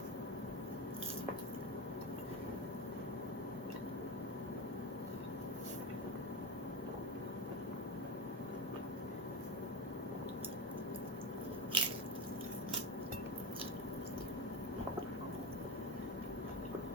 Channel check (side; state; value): both; normal; correlation 0.17